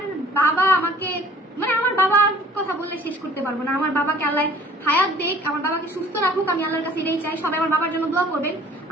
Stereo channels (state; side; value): normal; both; correlation 0.52